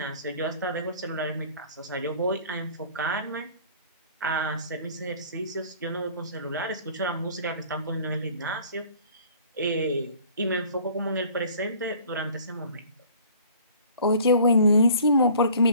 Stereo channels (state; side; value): inverted; both; correlation -0.51